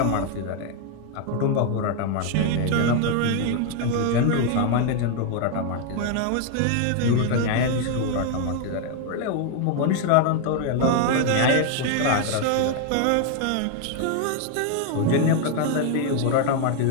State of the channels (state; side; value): different; both; correlation 0.00